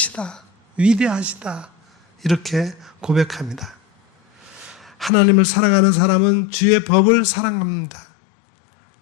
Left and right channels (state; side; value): drops out; right; at 5.1 s